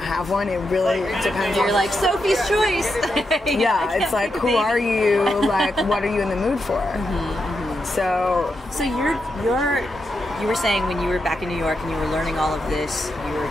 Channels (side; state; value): both; normal; correlation 0.85